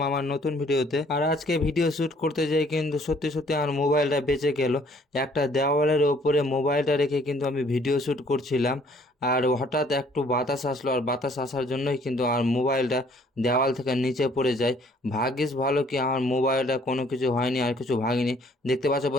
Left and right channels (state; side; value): normal; both; correlation 0.60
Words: আমার নতুন ভিডিওতে। আর আজকে ভিডিও শ্যুট করতে যাই কিন্তু সত্যি সত্যি আমার মোবাইলটা বেঁচে গেল। একটা দেওয়ালের ওপরে মোবাইলটা রেখে কিন্তু আমি ভিডিও শ্যুট করছিলাম, আর হঠাৎ একটু বাতাস আসলো, আর বাতাস আসার জন্যই কিন্তু আমার মোবাইলটা দেওয়াল থেকে নিচে পড়ে যায়। ভাগ্যিস ভালো কি আমার মোবাইলটা কোনো কিছু হয়নি, আর কিছু ভাঙিনি। দেখতে পাচ্ছ